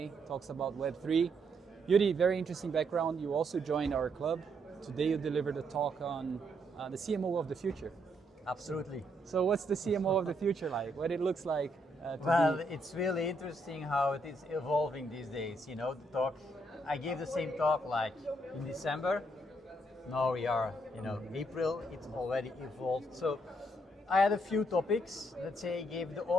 talks about Web3. Joeri, very interesting background. You also joined our club. Today you delivered a talk on the CMO of the future. Absolutely. So what's the CMO of the future like? What it looks like? Well, it's really interesting how it is evolving these days. You know, the talk, I gave the same talk like in December. Now we are, April, it's already evolved. So I had a few topics, let's say, gave the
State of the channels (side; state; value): both; normal; correlation 0.74